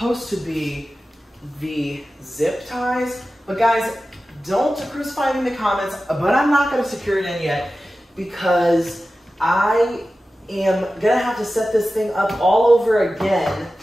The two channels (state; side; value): normal; both; correlation 0.94